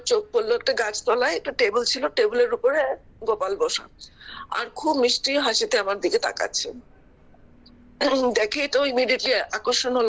চোখ পড়লো একটা গাছতলায় একটা টেবিল ছিল, টেবিলের উপরে গোপাল বসা, আর খুব মিষ্টি হাসিতে আমার দিকে তাকাচ্ছে। দেখে তো ইমিডিয়েটলি আকর্ষণ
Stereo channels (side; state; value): both; identical; correlation 1.00